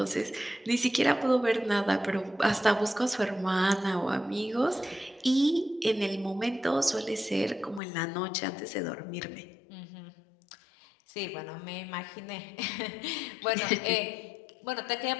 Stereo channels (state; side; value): drops out; right; at 7.8 s